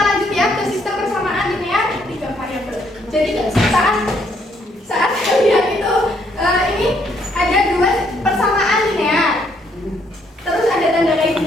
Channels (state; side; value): normal; both; correlation 0.70